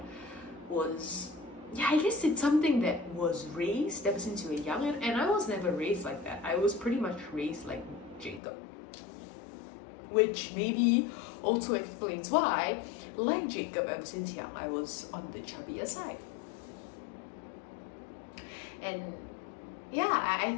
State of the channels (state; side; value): drops out; right; at 8.4 s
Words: was, yeah, I guess it's something that was raised ever since you were young, and I was never raised like that. I was pretty much raised like Jacob, which maybe also explains why, like Jacob, ever since young, I was on the chubbier side. And yeah, I